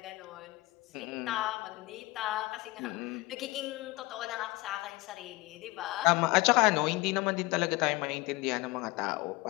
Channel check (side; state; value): right; quieter; 21.7 dB